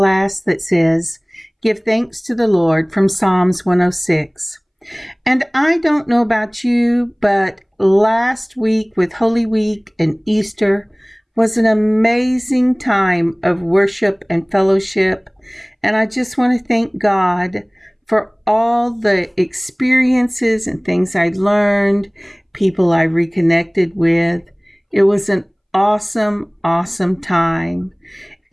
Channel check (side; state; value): both; identical; correlation 1.00